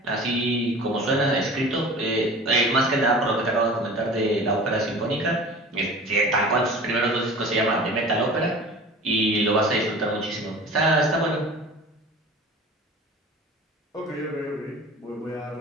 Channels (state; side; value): normal; both; correlation 0.40